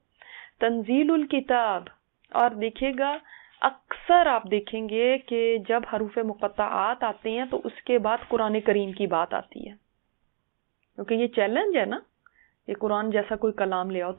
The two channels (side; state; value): left; silent; digital silence